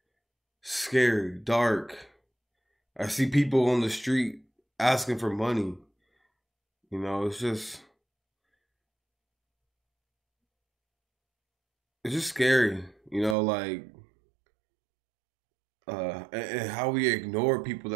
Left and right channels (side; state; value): left; drops out; at 13.4 s